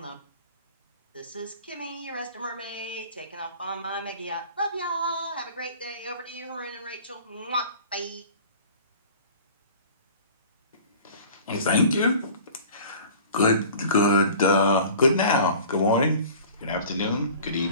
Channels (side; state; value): both; inverted; correlation -0.44